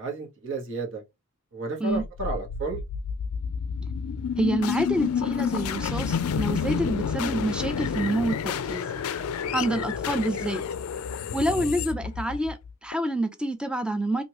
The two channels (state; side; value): normal; both; correlation 0.61